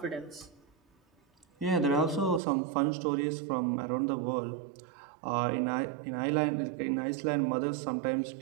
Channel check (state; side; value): drops out; left; at 2.4 s